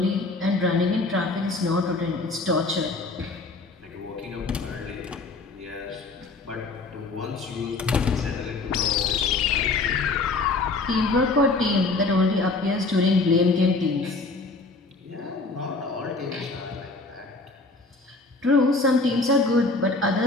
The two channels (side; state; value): right; quieter; 3.5 dB